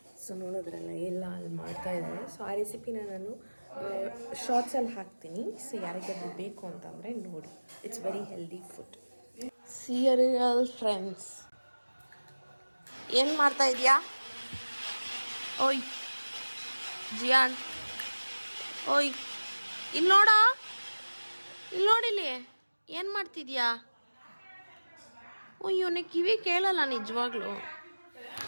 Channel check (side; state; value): both; inverted; correlation -1.00